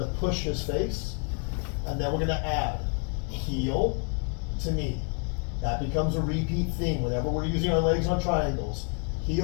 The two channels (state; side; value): quieter; right; 38.3 dB